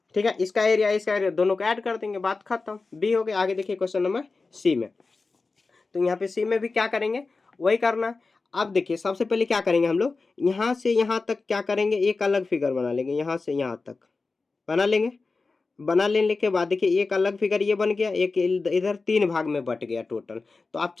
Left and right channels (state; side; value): quieter; right; 3.9 dB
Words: ठीक है। इसका एरिया दोनों को ऐड कर देंगे, बात खत्म, बी हो गया। आगे देखिए क्वेश्चन नंबर सी में, तो यहाँ पे सी में भी क्या करेंगे, वही करना है। अब देखिए सबसे पहले क्या करेंगे हम लोग, यहाँ से यहाँ तक क्या करेंगे, एक अलग फिगर बना लेंगे, यहाँ से यहाँ तक बना लेंगे। बना लेने के बाद देखिए एक अलग फिगर ये बन गया, एक इधर 3 भाग में बट गया टोटल, तो आप